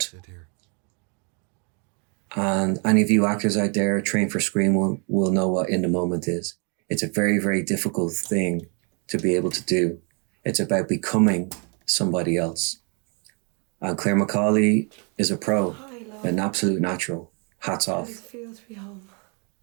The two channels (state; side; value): quieter; left; 36.6 dB